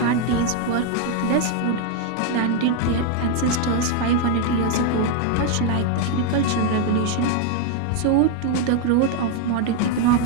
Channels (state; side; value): different; both; correlation 0.01